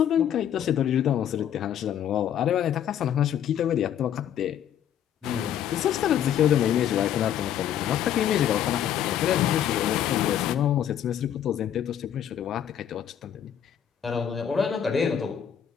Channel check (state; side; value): quieter; right; 9.8 dB